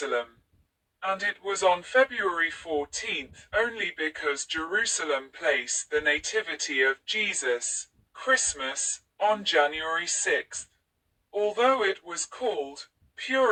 And it was on February 14th only because Jerusalem placed the Nativity of Jesus, Christmas, on January 6th. Although it was called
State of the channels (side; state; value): both; identical; correlation 1.00